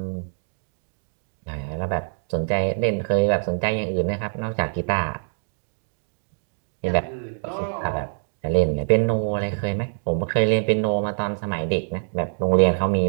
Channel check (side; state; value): left; silent; 62 dB below the other